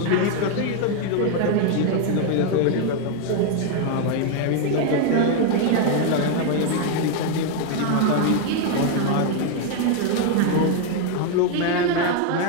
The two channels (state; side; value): different; both; correlation 0.01